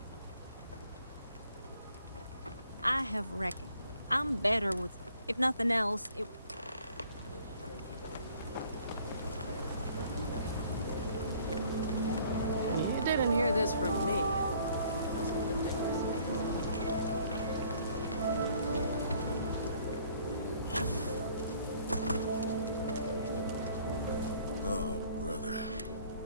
I have reckoned. I'm better with... If nothing else, it... You didn't hear this from me. Oh, brother.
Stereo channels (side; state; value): both; inverted; correlation -0.58